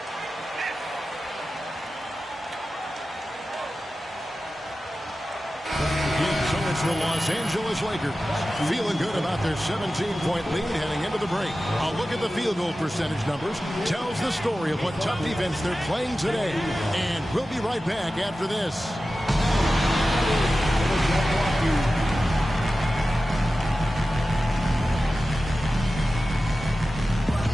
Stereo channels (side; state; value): both; normal; correlation 0.94